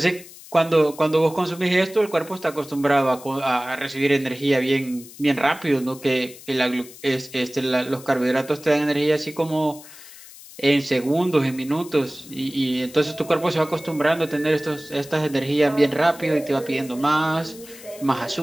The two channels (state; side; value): noise; left; hiss, 18 dB below the sound